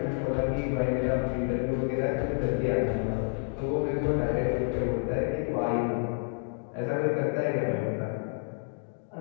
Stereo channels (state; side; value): silent; right; 58 dB below the other